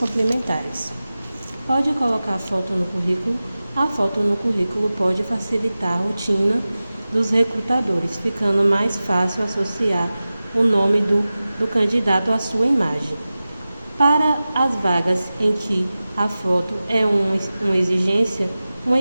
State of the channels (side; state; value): both; inverted; correlation -0.96